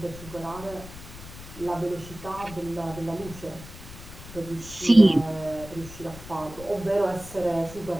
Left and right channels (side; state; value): left; noise; rumble, 15 dB below the sound